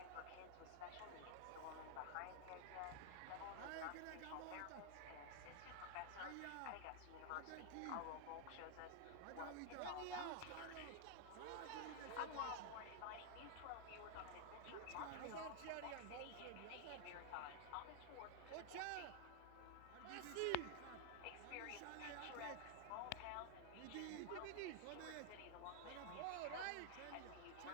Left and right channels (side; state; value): both; different; correlation 0.00